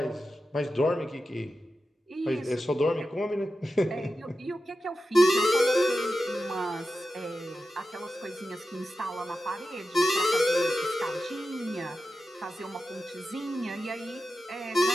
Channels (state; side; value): normal; both; correlation 0.92